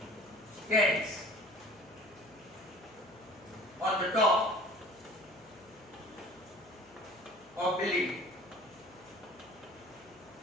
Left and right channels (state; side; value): noise; left; hum, 25 dB below the sound